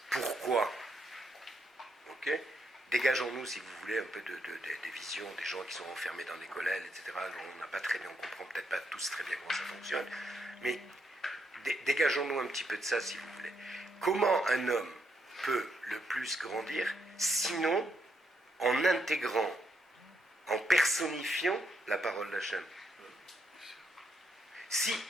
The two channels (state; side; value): normal; both; correlation 0.77